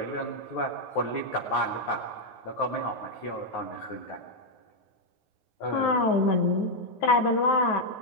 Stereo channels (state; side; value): late; right; 9.4 ms